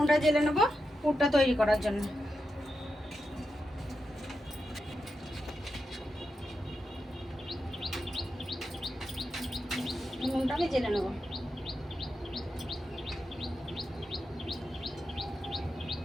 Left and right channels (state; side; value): normal; both; correlation 0.88